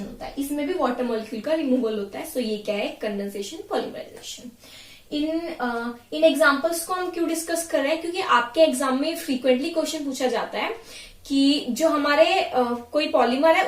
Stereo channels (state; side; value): identical; both; correlation 1.00